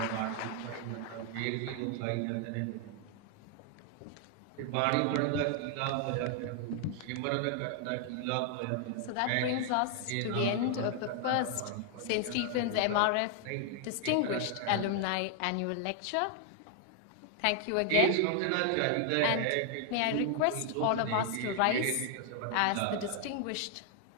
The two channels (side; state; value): both; different; correlation 0.00